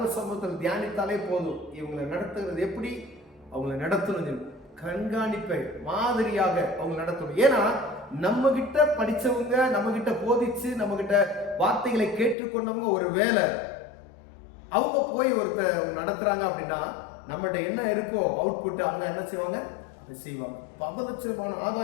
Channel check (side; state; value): right; drops out; at 12.4 s